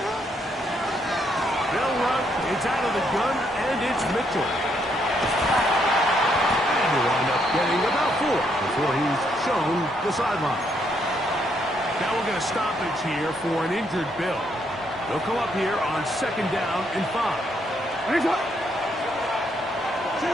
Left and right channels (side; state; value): both; normal; correlation 0.74